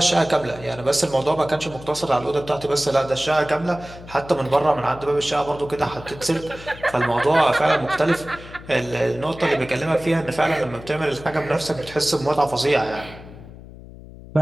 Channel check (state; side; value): noise; left; hum, 17 dB below the sound